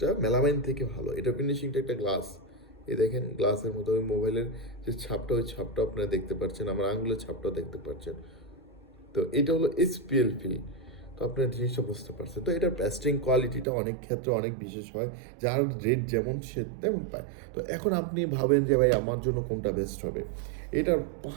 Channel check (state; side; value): drops out; left; at 13.7 s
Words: মেলামাইন থেকে ভালো। এটা ফিনিশিংটা একটা গ্লাস, এই দেখেন গ্লাসের মতো। ওই মোবাইলের যে ছাপটা, ওই ছাপটা আপনারা দেখতে পাচ্ছেন, আমার আঙুলের ছাপটাও দেখতে পাচ্ছেন। তো এটা হলো এসপিএল ফিল। তো আপনার জিনিসটা বুঝতে পারছেন। তো এটার প্যাস্টিং কোয়ালিটিটা অনেক ক্ষেত্রে অনেক বিশেষ হয়, যার রেট যেমন সে তেমন পায়। তো এখন আপনি ভাবেন যে ভাই আমার জন্য কোনটা বেস্ট হবে, এটার